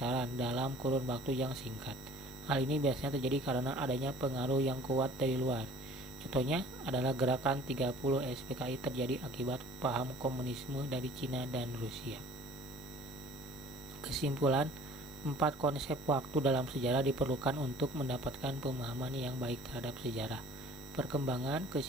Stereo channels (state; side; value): normal; both; correlation 0.50